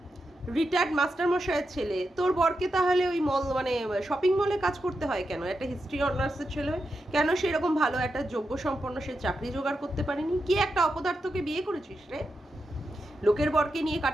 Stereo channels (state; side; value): normal; both; correlation 0.87